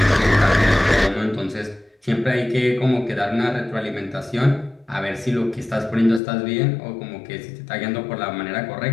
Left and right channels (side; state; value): right; drops out; at 6.2 s